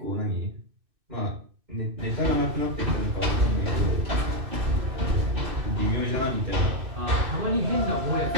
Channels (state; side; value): late; left; 2.6 ms